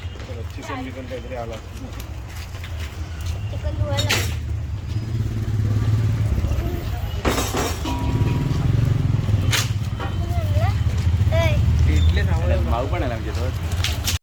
भाऊ पण आहे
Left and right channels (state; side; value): identical; both; correlation 1.00